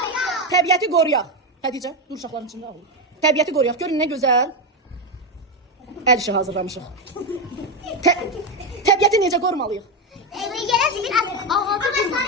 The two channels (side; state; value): both; normal; correlation 0.10